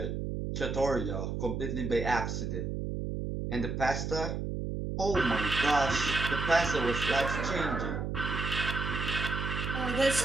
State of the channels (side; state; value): right; noise; hum, 3 dB below the sound